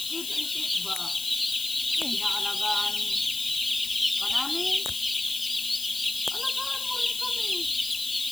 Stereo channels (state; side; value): noise; left; hiss, 6 dB below the sound